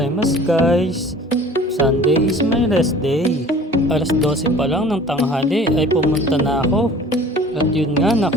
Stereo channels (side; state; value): both; normal; correlation 0.46